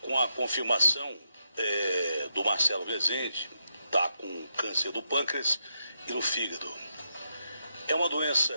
a confirmação do Marcelo Rezende, está com câncer do pâncreas e no fígado. É uma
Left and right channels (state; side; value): inverted; both; correlation -0.83